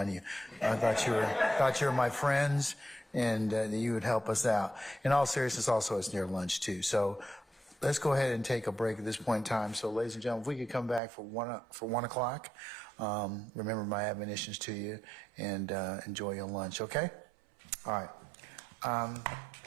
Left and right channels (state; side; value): drops out; left; at 11.0 s